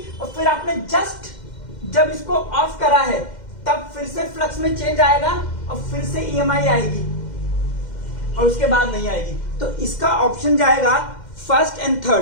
और फिर आपने जस्ट जब इसको ऑफ करा है तब फिर से फ्लक्स में चेंज आएगा और फिर से ईएमआई आएगी और उसके बाद नहीं आएगी। तो इसका ऑप्शन जाएगा फर्स्ट एंड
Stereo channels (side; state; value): right; late; 2.1 ms